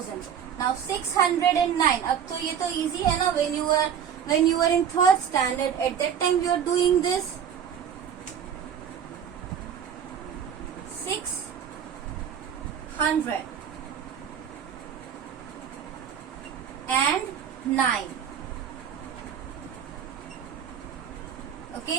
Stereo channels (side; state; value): left; quieter; 8.3 dB